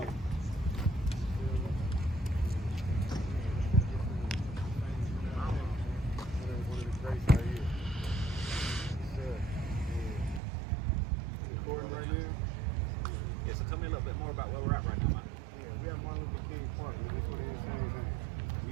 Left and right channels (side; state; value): left; drops out; at 10.4 s